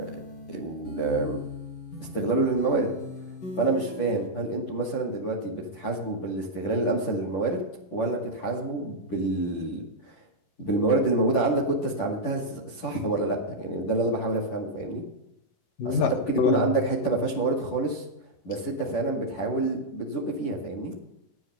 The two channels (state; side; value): late; right; 10 ms